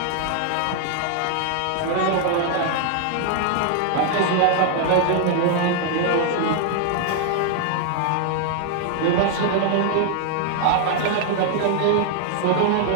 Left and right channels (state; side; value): different; both; correlation 0.00